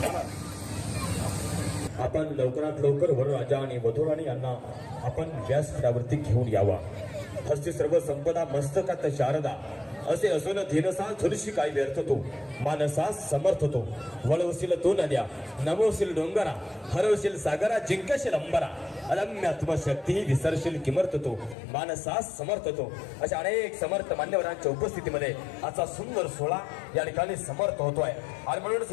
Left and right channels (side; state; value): right; drops out; at 21.6 s